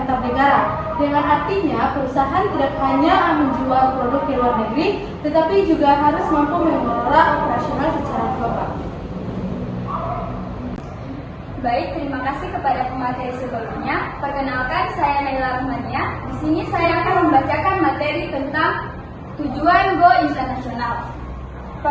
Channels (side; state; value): both; identical; correlation 1.00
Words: negara. Dengan artinya, perusahaan tidak hanya menjual produk ke luar negeri, tetapi juga harus mampu mengelola operasional secara global. Baik, terima kasih kepada pemateri sebelumnya. Perkenalkan, saya Naila Rahmania. Di sini saya akan membacakan materi tentang tujuan Go Internasional.